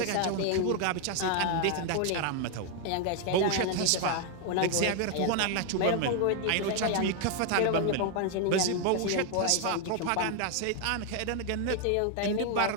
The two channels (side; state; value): both; different; correlation 0.01